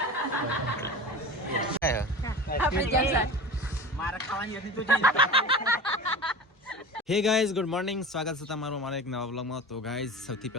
આપણે જલસા. હે ગાઈઝ ગુડ મોર્નિંગ, સ્વાગત છે તમારું અમારા એક નવા વ્લોગમાં. તો ગાઈઝ સૌથી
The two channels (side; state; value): both; normal; correlation 0.32